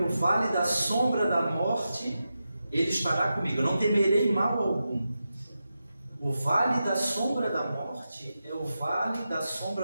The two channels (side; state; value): both; inverted; correlation -0.90